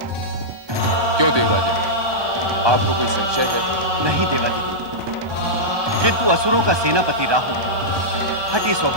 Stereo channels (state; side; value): late; left; 1.2 ms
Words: क्यों देवराजन, आपको कोई संशय है? नहीं देवादिदेव, किंतु असुरों का सेनापति राहु हठी